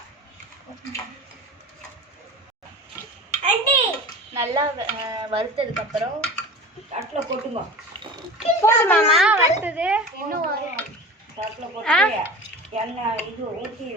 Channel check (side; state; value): both; normal; correlation 0.35